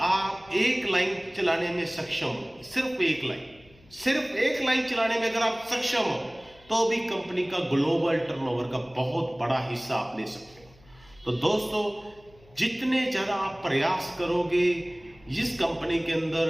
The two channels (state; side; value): noise; left; hum, 27 dB below the sound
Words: आप एक लाइन चलाने में सक्षम हो, सिर्फ एक लाइन चलाने में अगर आप सक्षम हो, तो भी कंपनी का ग्लोबल टर्नओवर का बहुत बड़ा हिस्सा आप ले सकते हो। तो दोस्तों, जितने ज्यादा आप प्रयास करोगे इस कंपनी के